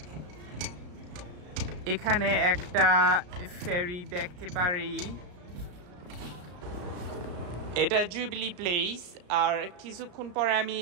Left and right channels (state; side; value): late; left; 34 ms